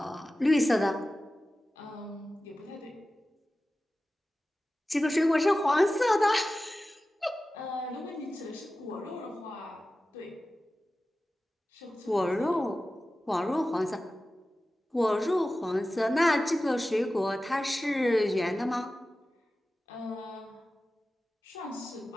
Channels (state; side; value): normal; both; correlation 0.95